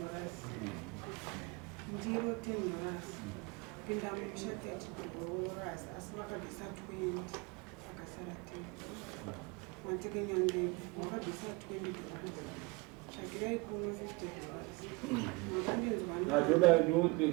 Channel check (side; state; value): left; quieter; 25.5 dB